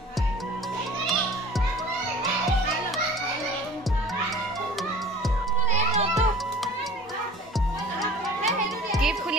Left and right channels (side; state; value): both; normal; correlation 0.44